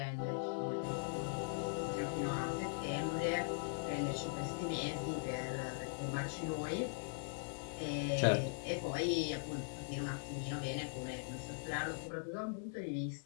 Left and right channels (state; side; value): silent; right; digital silence